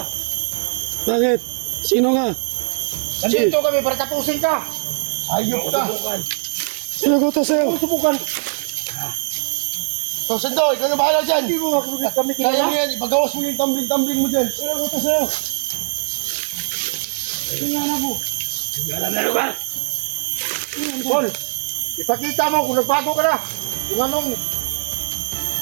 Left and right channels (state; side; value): silent; left; 65 dB below the other